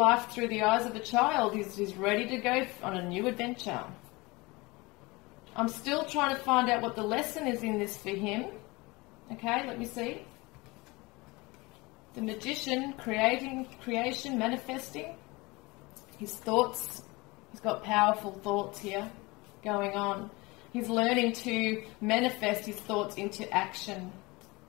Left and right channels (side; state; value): right; quieter; 23.8 dB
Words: through the eyes of a child. He's ready to go on a new adventure. I'm still trying to find out what the lesson is in this for him. Okay, let me see. The Magician, creation, manifesting. His thoughts. He's got powerful thoughts here going on. He's learning to manifest his thoughts into action.